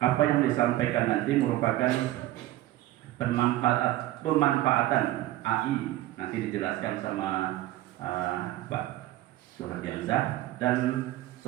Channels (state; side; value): quieter; left; 15.7 dB